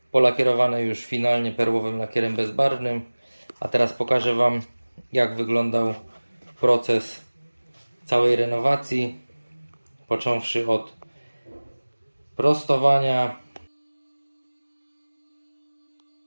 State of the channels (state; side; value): inverted; both; correlation -1.00